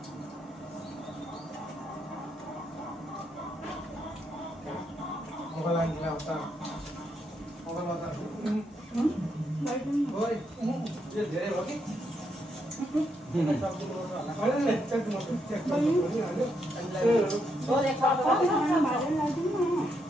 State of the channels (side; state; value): both; normal; correlation 0.78